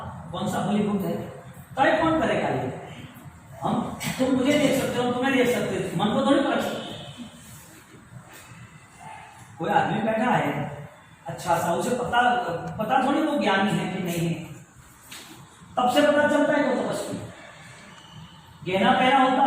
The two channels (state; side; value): identical; both; correlation 1.00